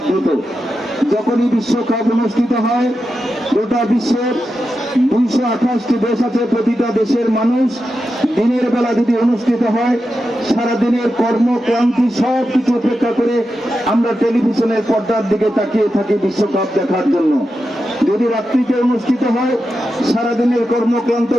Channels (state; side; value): normal; both; correlation 0.89